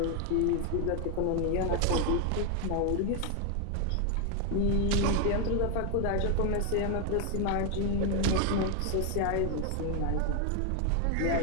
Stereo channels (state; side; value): different; both; correlation 0.01